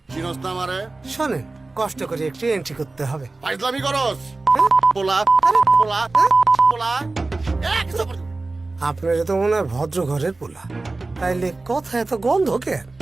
চিনস না আমারে? শোনেন, কষ্ট করে একটু এন্ট্রি করতে হবে। ফাইজলামি করস? পোলা পোলা পোলা এক সাপোর্ট। আপনার তো মনে হয় ভদ্র ঘরের পোলা, তাইলে কথা এত গন্ধ কেন?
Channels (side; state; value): left; quieter; 3.3 dB